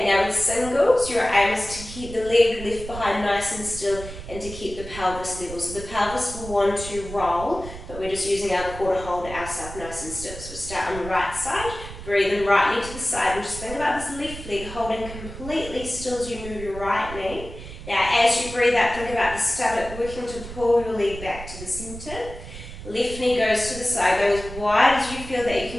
now with singles, your aim is to keep the leg left behind nice and still and to keep the pelvis level. So the pelvis will want to roll, but we're just using our core to hold ourselves nice and still. So we'll start on the right side, breathe in right knee to the side, and just think about this left leg holding completely still as you move your right knee. Now as you breathe out, think about the stomach working to pull your leg back to the centre. Left knee goes to the side, go as wide as you feel that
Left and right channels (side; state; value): right; noise; rumble, 12 dB below the sound